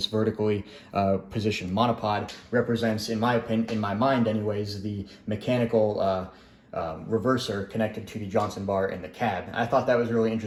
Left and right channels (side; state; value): both; identical; correlation 1.00